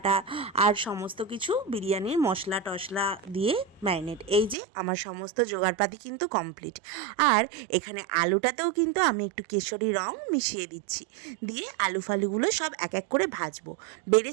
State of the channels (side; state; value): left; drops out; at 4.5 s